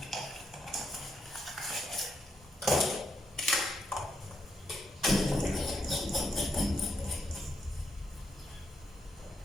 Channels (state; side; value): normal; both; correlation 0.79